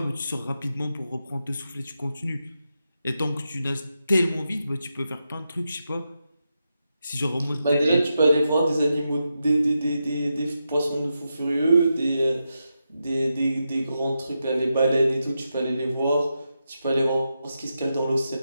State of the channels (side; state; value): both; inverted; correlation -0.87